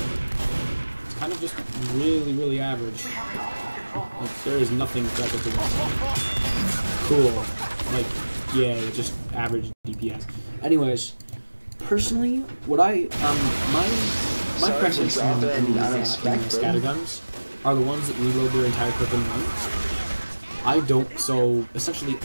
It's kind of just really, really average. Like, there is nothing special to this. Cool. Like, yeah, just average DPS. Anyways, personally, what my preference in these scatterguns are the ones that reload their entire clip in one. I don't, so essentially,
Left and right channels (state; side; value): inverted; both; correlation -1.00